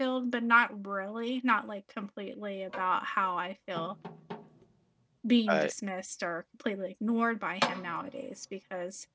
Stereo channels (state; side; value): identical; both; correlation 1.00